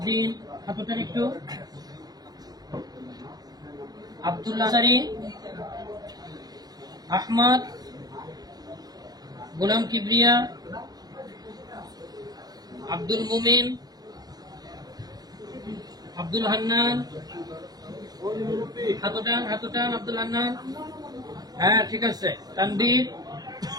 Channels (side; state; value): left; late; 0.19 ms